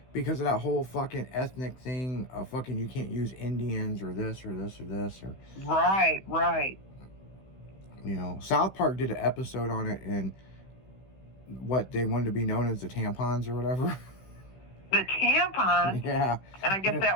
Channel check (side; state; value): right; late; 16 ms